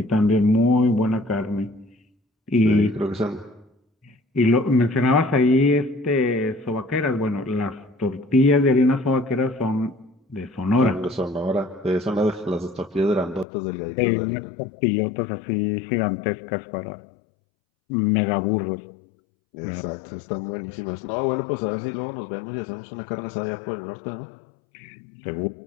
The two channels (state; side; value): drops out; right; at 13.5 s